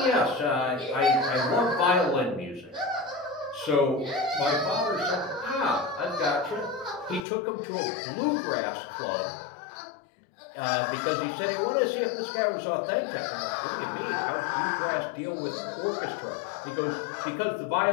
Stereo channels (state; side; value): drops out; right; at 7.2 s